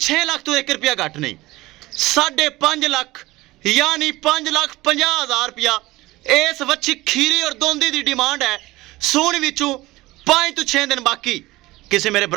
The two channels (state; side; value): quieter; left; 19.2 dB